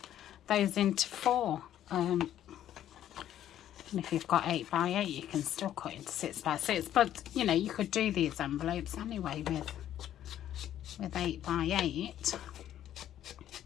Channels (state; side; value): quieter; right; 11.5 dB